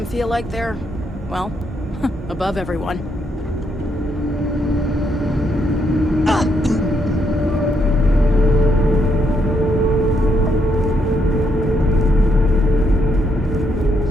feel like they're, well, above everyone.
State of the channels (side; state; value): both; normal; correlation 0.76